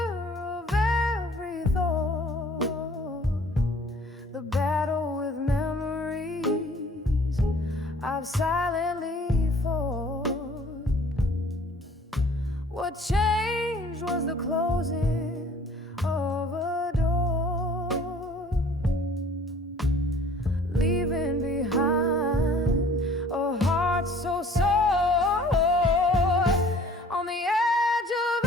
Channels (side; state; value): both; normal; correlation 0.52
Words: of every thought, the battle with memories I've silently fought. What changed was the closing of a door, leaving behind a heart so sore. On the edge of